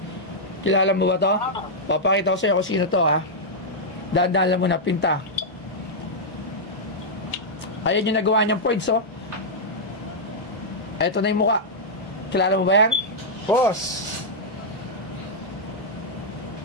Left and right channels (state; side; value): normal; both; correlation -0.06